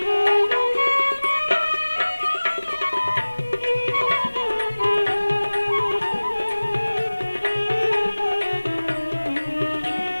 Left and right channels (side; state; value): both; inverted; correlation -1.00